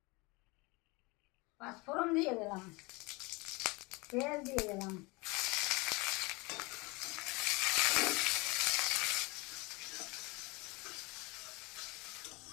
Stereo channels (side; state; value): right; quieter; 26.0 dB